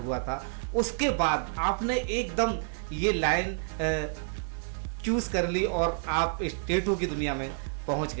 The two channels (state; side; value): silent; left; 58 dB below the other